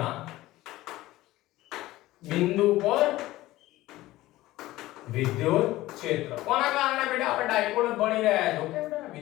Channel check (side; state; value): right; quieter; 17.0 dB